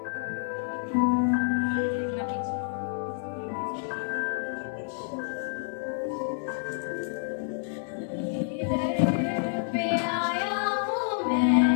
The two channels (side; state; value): right; silent; digital silence